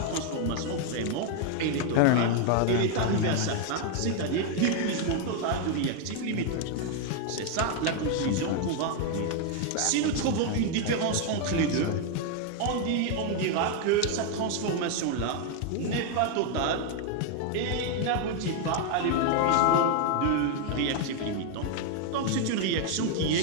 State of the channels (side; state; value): both; different; correlation 0.00